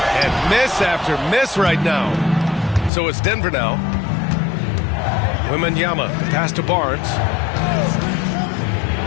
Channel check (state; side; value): drops out; right; at 2.9 s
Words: miss after miss right now. So it's Denver now. Wembanyama, pass to Barnes.